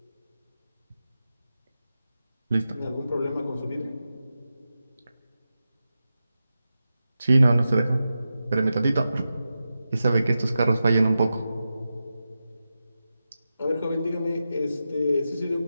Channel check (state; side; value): inverted; both; correlation -0.91